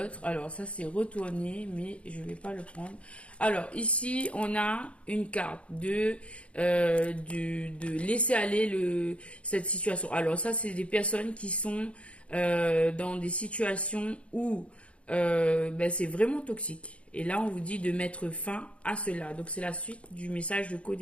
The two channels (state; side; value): late; right; 0.061 ms